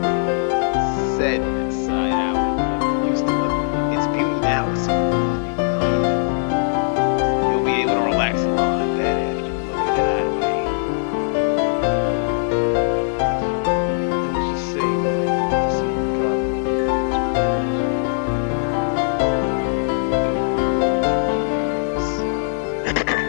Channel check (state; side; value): silent; right; digital silence